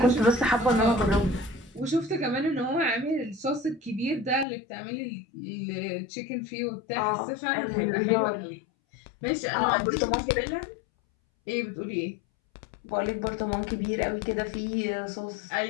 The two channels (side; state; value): right; drops out; at 4.5 s